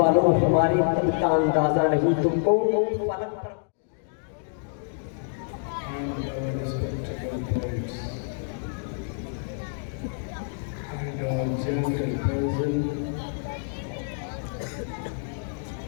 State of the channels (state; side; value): silent; right; digital silence